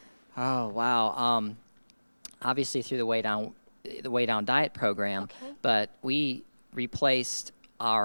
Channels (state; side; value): inverted; both; correlation -1.00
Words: Oh, wow. Obviously through the Way Down diet program, but we replaced